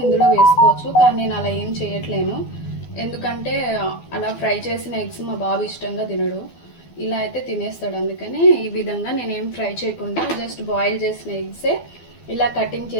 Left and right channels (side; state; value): right; late; 12 ms